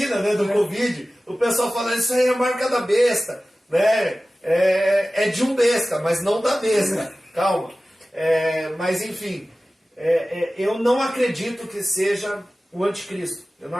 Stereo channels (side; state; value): both; normal; correlation 0.96